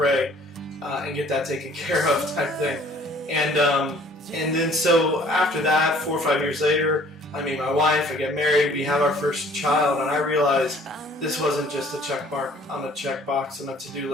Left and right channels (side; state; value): both; normal; correlation 0.55